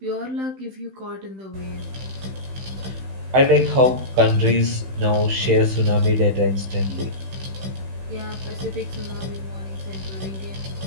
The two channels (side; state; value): left; late; 15 ms